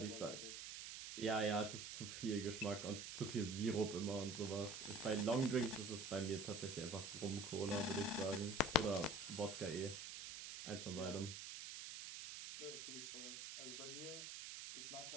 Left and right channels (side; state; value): right; noise; hiss, 7 dB below the sound